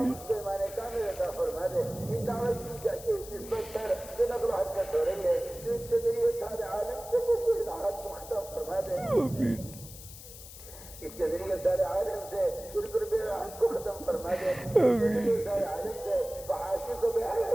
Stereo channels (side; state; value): left; noise; hiss, 15 dB below the sound